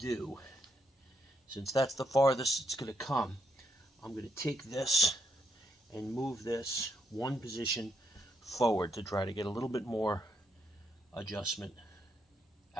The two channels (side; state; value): both; normal; correlation 0.77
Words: since that's the farthest it's going to come, I'm going to take this and move this one position forward to try to get a little bit more adjustment